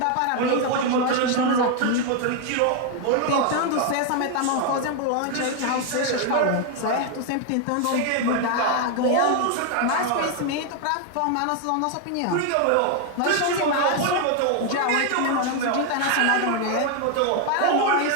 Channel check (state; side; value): different; both; correlation 0.01